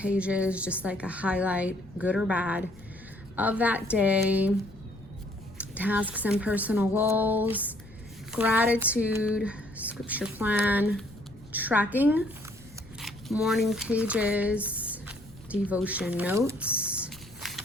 just like a highlight, good or bad, of that day, tasks and personal goals, gratitude, scripture plan, tracking, morning pages, devotion notes,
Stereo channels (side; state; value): left; noise; rumble, 22 dB below the sound